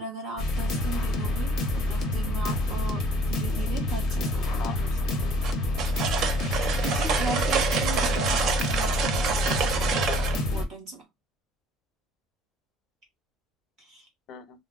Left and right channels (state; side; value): normal; both; correlation 0.57